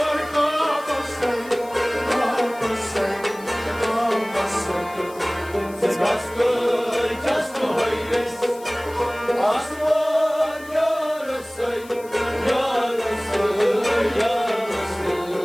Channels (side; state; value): left; noise; hiss, 21 dB below the sound